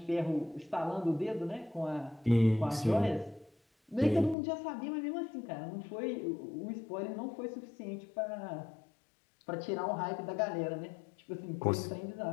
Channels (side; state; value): right; drops out; at 4.4 s